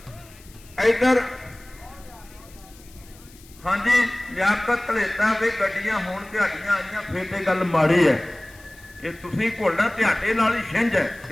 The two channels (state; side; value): noise; left; hiss, 24 dB below the sound